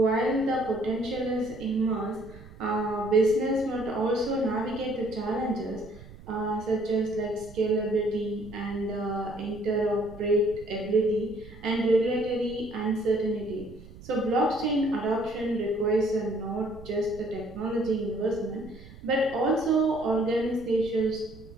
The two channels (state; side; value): noise; right; rumble, 18 dB below the sound